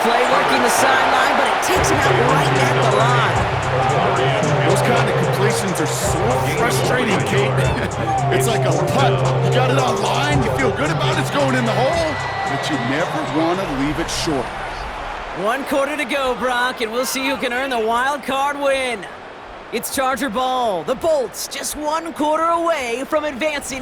play working the sideline, but it takes him out right at the line. Those kind of completions are so frustrating, Kate. It's like a putt. You got it on line, you feel good about it, it's going in the hole, but you never want to leave it short. 1 quarter to go, Brock, and we'll see who can earn the wild card win. It's Charger ball. The Bolts just 1 quarter away from advancing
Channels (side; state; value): both; identical; correlation 1.00